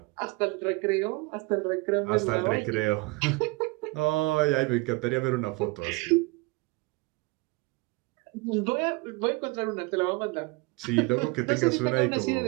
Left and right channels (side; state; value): left; quieter; 25.1 dB